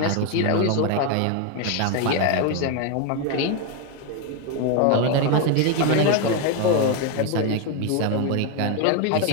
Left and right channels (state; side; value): different; both; correlation 0.01